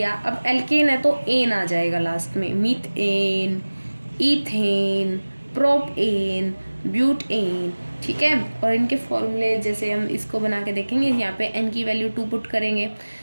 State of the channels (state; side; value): inverted; both; correlation -1.00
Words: अब एल्केन है तो एन आ जाएगा लास्ट में, मीथेन, इथेन, प्रोपेन, ब्यूटेन। ठीक है, और इनके फॉर्मूले जैसे हम इसको बना के देखेंगे, यहाँ पे n की वैल्यू 2 पुट करेंगे